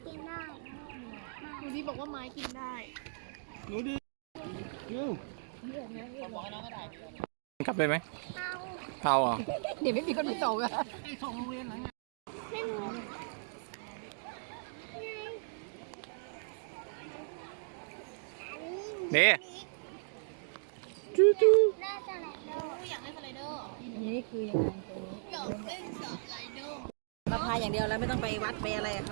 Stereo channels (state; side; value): silent; left; digital silence